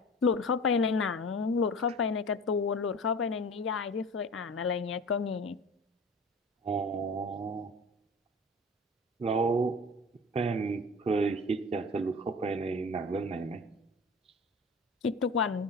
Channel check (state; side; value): normal; both; correlation 0.37